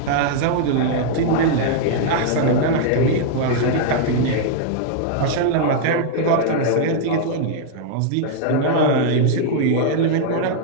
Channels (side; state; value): both; different; correlation -0.01